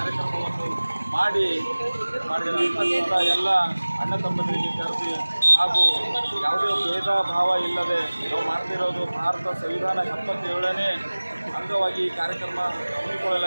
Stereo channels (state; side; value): inverted; both; correlation -1.00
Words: ಮಾಡಿದ ಎಲ್ಲ ಅಣ್ಣ ತಮ್ಮಂದಿರಿಗೆ ಕರೆದಿ ಹಾಗೂ ಯಾವುದೇ ಭೇದ ಭಾವ ಇಲ್ಲದೆ ನಾವು ಮಾಡ್ತಿರೋದು ಭಾರತ ಸಂವಿಧಾನ 77ನೇ ಅಂಗವಾಗಿ ಈ ಕಾರ್ಯಕ್ರಮ